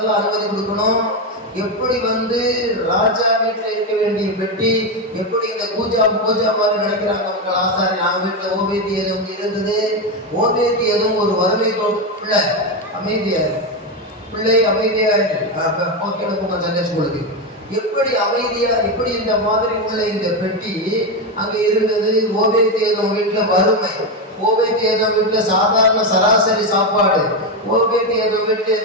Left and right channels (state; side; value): normal; both; correlation 0.10